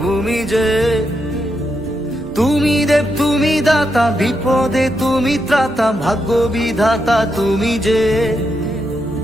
ভূমি যে। তুমি দেব তুমি দাতা, বিপদে তুমি ত্রাতা, ভাগ্য বিধাতা তুমি যে।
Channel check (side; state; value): right; noise; hum, 21 dB below the sound